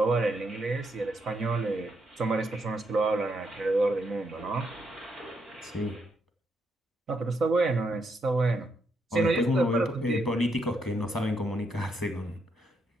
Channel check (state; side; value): normal; both; correlation 0.78